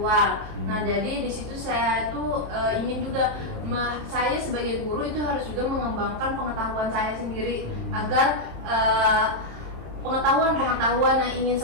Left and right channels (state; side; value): late; left; 27 ms